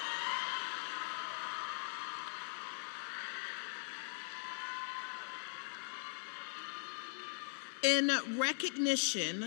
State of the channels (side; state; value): right; silent; digital silence